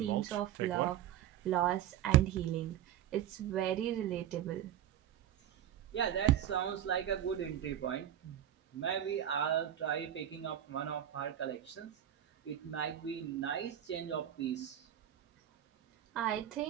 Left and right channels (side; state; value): left; quieter; 11.0 dB